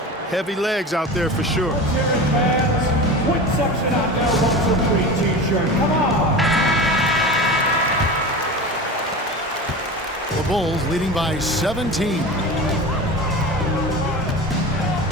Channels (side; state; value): both; normal; correlation 0.30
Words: Heavy legs out there for sure. Quick section out there, 1-2-3 t-shirt. Come on. The Bulls leading by 17.